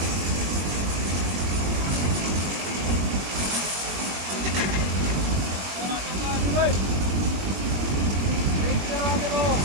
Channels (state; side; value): late; left; 21 ms